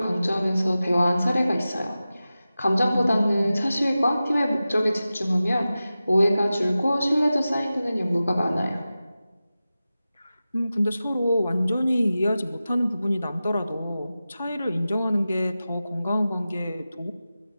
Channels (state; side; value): inverted; both; correlation -0.94